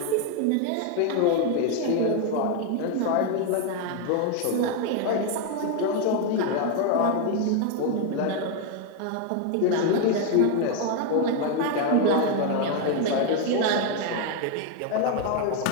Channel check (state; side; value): different; both; correlation 0.01